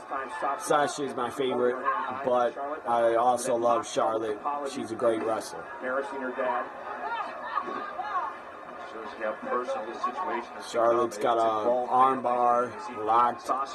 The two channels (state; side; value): identical; both; correlation 1.00